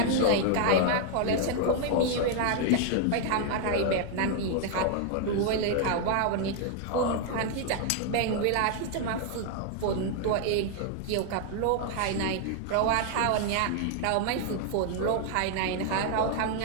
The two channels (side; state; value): both; different; correlation 0.00